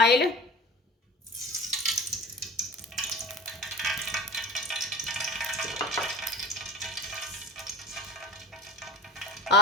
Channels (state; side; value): normal; both; correlation 0.34